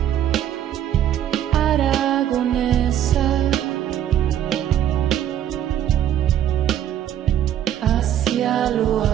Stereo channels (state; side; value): quieter; left; 10.8 dB